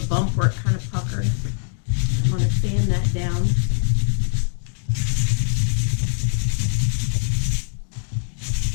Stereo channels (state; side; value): silent; right; digital silence